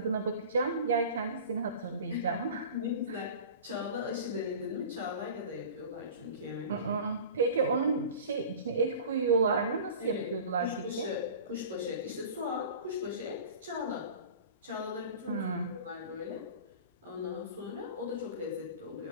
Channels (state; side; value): inverted; both; correlation -0.39